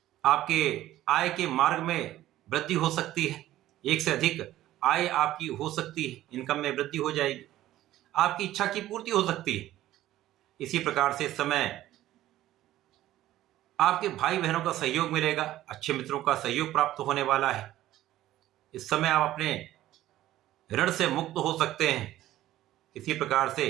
आपके आय के मार्ग में वृद्धि हो सकती है, एक से अधिक आय आपकी हो सकती है, इनकम में वृद्धि हो जाएगी, आपकी इच्छा की पूर्ति हो सकती है। इसी प्रकार से इस समय आपके भाई बहनों का सहयोग मिलेगा, अच्छे मित्रों का सहयोग प्राप्त होने वाला है। इस समय आप अपने ऋण से मुक्त हो सकते हैं। इसी प्रकार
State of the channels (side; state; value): left; quieter; 14.3 dB